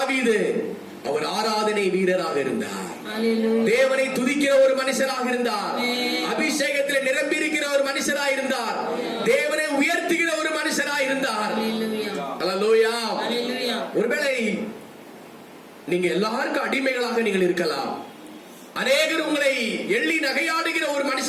அவர் ஆராதனை வீரராக இருந்தார். தேவனை துதிக்கிற ஒரு மனுஷராக இருந்தார். அபிஷேகத்தில் நிரம்பி இருக்கிற ஒரு மனுஷராக இருந்தார். தேவனை உயர்த்துகிற ஒரு மனுஷராக இருந்தார். அல்லேலூயா. ஒருவேளை நீங்க எல்லாருக்கும் அடிமைகளாக நீங்கள் இருக்கலாம். அநேகர் உங்களை எள்ளி நகையாடுகிற ஒரு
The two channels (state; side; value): identical; both; correlation 1.00